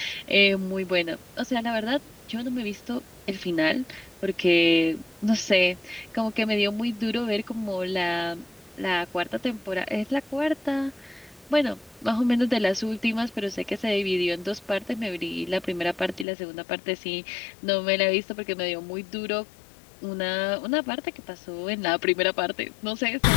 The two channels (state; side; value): drops out; right; at 16.2 s